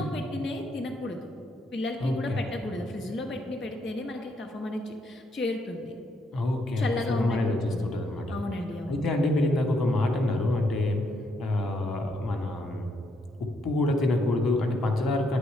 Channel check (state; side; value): normal; both; correlation 0.75